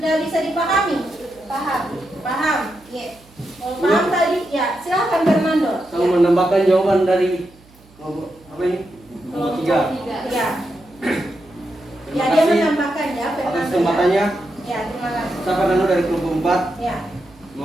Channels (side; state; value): right; noise; hum, 27 dB below the sound